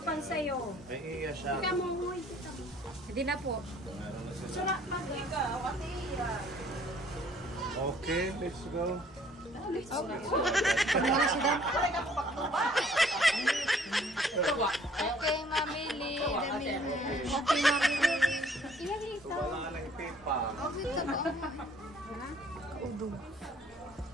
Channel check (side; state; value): both; normal; correlation 0.58